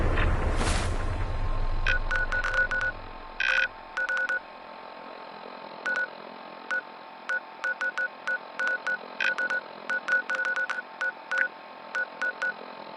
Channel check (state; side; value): identical; both; correlation 1.00